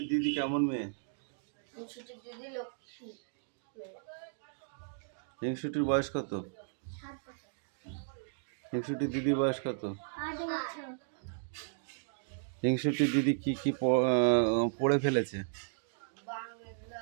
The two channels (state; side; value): silent; left; digital silence